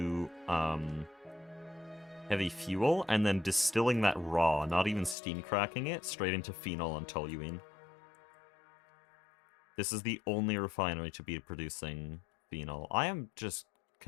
heavy fuel, and then distilling that raw, not even steam cracking it, straight into phenol and toluene. This is the only refinery to be producing phenol. I am just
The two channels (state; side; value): drops out; right; at 5.2 s